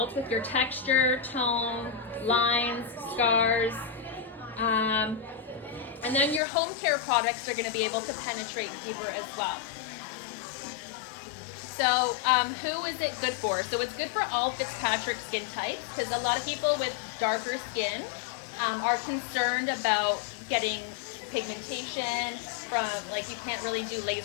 with your texture, tone, lines, scars. And then your home care products are going to be able to penetrate deeper as well. So who is it good for? So it's good for all Fitzpatrick skin types, because a lot of people with darker skin are concerned about getting pigmentation from, like, you can't really do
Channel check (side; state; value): right; drops out; at 6.4 s